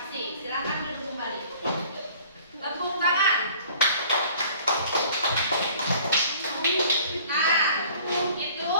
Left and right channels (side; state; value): both; inverted; correlation -0.52